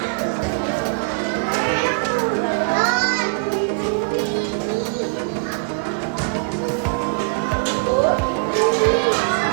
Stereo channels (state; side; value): quieter; left; 35.0 dB